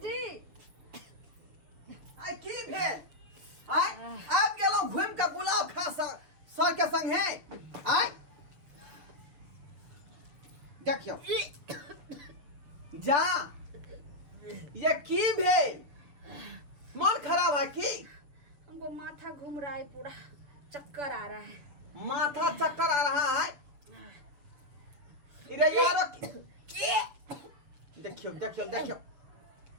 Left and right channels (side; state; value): left; late; 7.0 ms